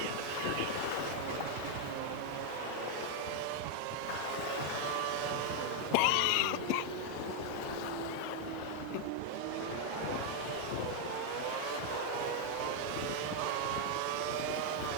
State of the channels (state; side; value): different; both; correlation 0.01